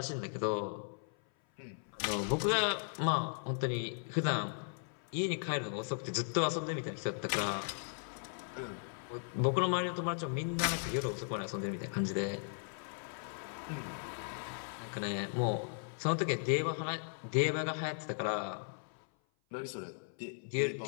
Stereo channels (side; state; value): right; silent; 53 dB below the other